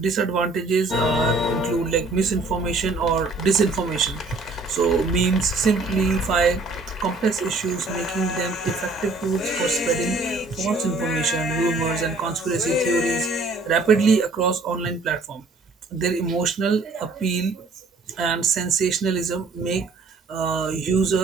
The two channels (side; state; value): left; quieter; 3.4 dB